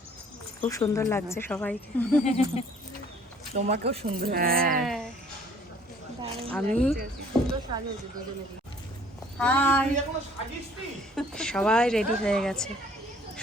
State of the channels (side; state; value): both; normal; correlation 0.57